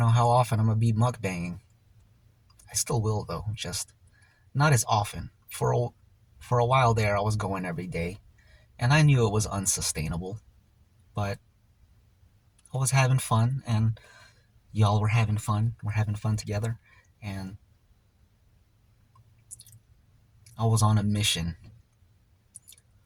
how often I'm gonna be mukbanging. I still will though, just not as often. For a while there, I was going every day, and I knew it was unsustainable, but I was having fun, and y'all were having fun. We're having fun together, and I was on a mission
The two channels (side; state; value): both; identical; correlation 1.00